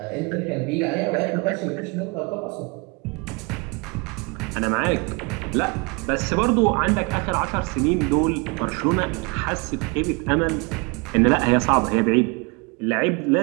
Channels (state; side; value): quieter; left; 29.4 dB